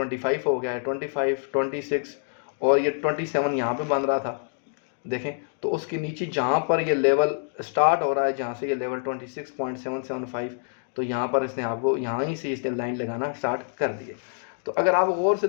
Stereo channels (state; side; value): silent; right; digital silence